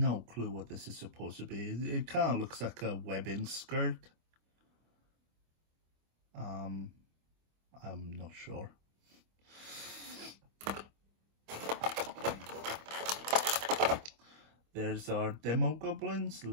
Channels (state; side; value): late; left; 25 ms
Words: clue what this is supposed to be. It kind of looks like a webbing skirt. I'm not sure. There's our Demo Goblin's